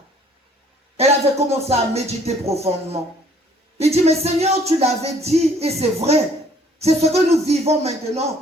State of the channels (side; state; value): both; normal; correlation 0.59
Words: Elle avait commencé à méditer profondément. Il dit, mais Seigneur, tu l'avais dit, et c'est vrai. C'est ce que nous vivons